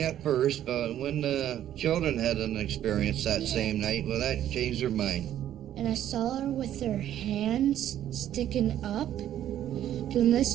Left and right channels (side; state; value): left; quieter; 11.4 dB